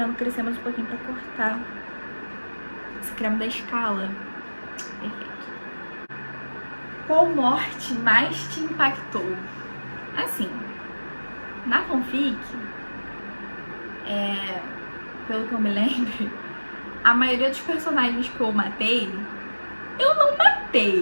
crescer mais um pouquinho pra cortar. Esse creme da Escala. Perfeito. Qual morte mais te impactou? Assim, na fanfic, pelo que eu me lembro, a maioria dos personagens que eu matei, eu não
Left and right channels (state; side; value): inverted; both; correlation -1.00